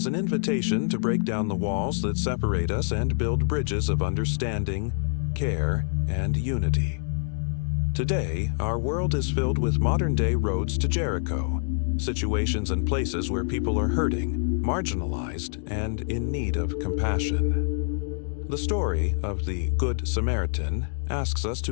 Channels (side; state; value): right; silent; digital silence